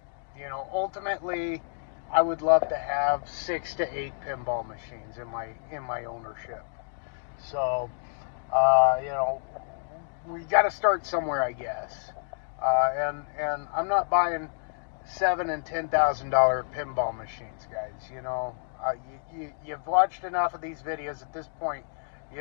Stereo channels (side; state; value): right; silent; digital silence